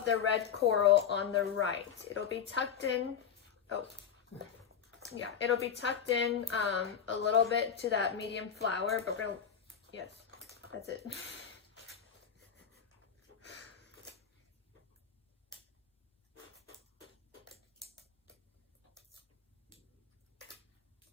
the red coral on the right. It'll be tucked in. Oh. Yeah, it'll be tucked in a little bit to that medium flower, but we're going to, yes, that's it.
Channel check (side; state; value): right; quieter; 7.8 dB